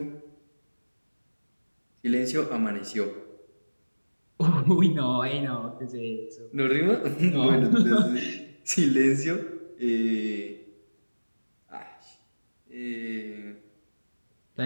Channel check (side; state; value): both; inverted; correlation -1.00